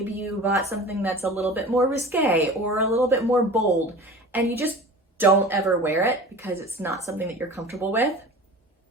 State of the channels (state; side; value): normal; both; correlation 0.38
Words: you bought something that's a little bit more risque or a little bit more bold, and you just don't ever wear it because it's not something that you're comfortable with.